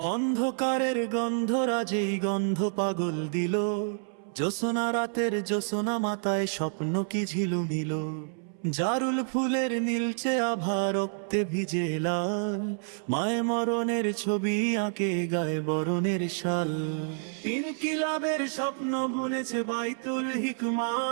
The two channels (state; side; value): silent; left; 59 dB below the other